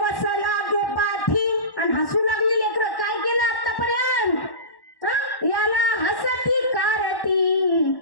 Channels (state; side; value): late; right; 1.1 ms